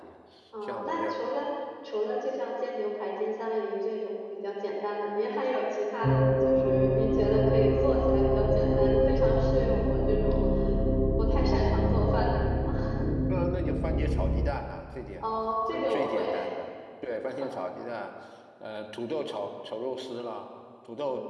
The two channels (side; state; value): both; identical; correlation 1.00